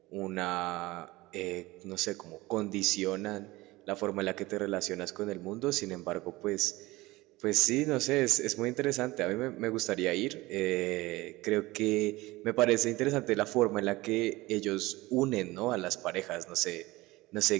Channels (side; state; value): left; quieter; 20.1 dB